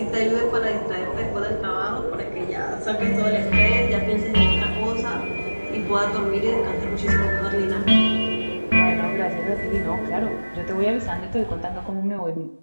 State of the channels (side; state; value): both; inverted; correlation -1.00